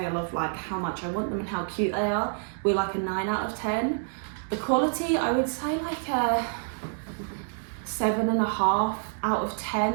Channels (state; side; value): silent; left; digital silence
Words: of like how much I want them and how cute they are, we're like a 9 out of 10. The quality, I would say like a 7.5 out of